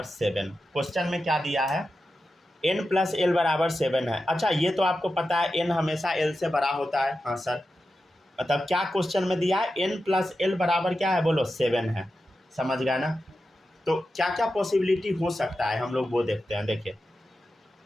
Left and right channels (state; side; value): normal; both; correlation 0.91